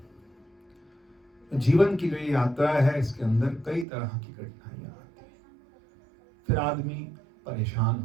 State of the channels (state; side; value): drops out; left; at 3.9 s